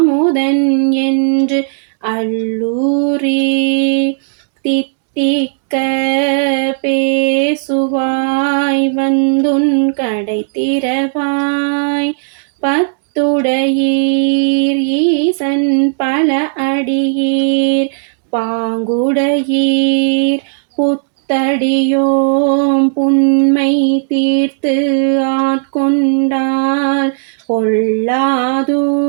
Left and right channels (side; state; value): left; silent; digital silence